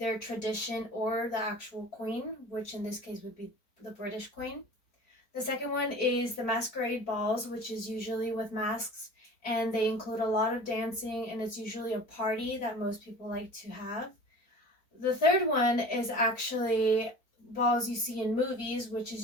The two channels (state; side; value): late; right; 4.4 ms